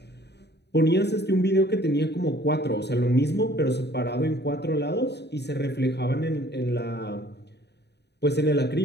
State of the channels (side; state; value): right; late; 0.49 ms